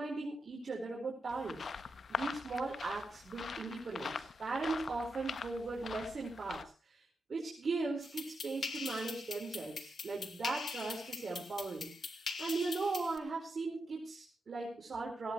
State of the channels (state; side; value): normal; both; correlation 0.85